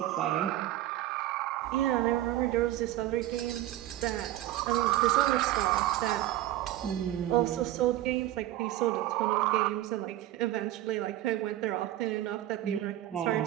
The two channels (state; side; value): quieter; left; 14.4 dB